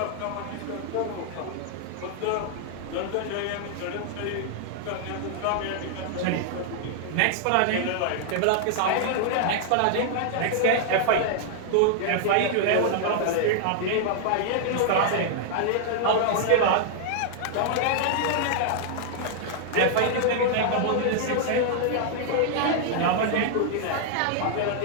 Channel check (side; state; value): both; different; correlation -0.01